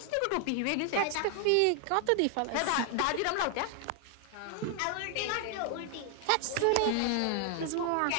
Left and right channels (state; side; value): different; both; correlation 0.00